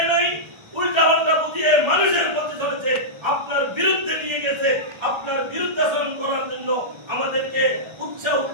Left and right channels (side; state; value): left; late; 1.3 ms